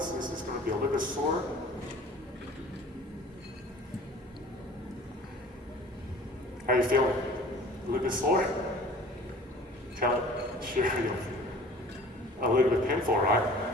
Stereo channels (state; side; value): normal; both; correlation 0.46